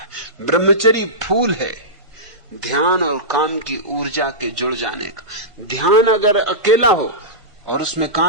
है। ब्रह्मचर्य फूल है ध्यान और काम की ऊर्जा के जुड़ जाने का। ध्यान अगर अकेला हो और उसमें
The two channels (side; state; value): left; late; 1.5 ms